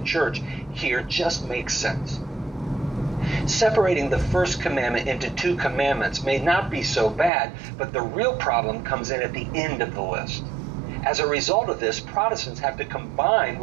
here just makes sense. Separating the first commandment into 2 commandments may not be so bad, but the real problem comes in at the end of the list. As a result of this, Protestants have to combine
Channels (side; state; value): left; drops out; at 7.3 s